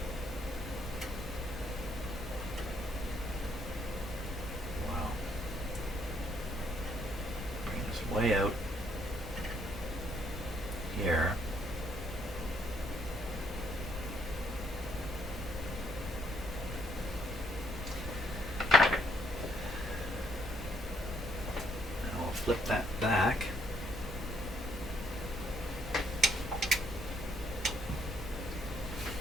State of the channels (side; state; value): both; normal; correlation 0.70